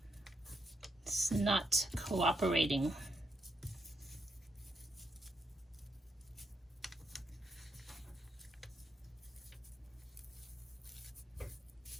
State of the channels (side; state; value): both; normal; correlation 0.79